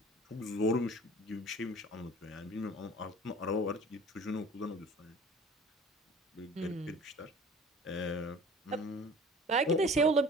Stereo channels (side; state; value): both; normal; correlation 0.45